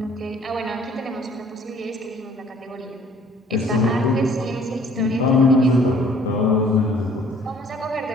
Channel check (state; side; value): normal; both; correlation 0.56